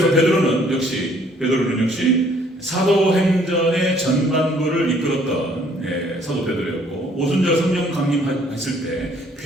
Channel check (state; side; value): normal; both; correlation 0.61